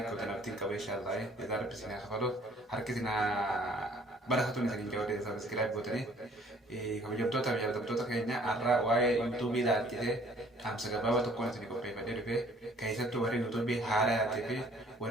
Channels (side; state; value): both; normal; correlation 0.57